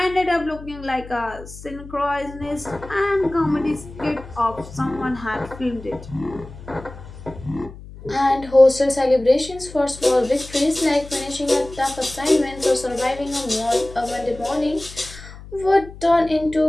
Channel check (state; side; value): noise; left; hum, 16 dB below the sound